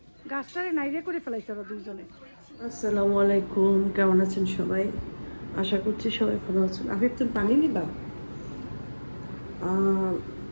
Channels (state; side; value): inverted; both; correlation -1.00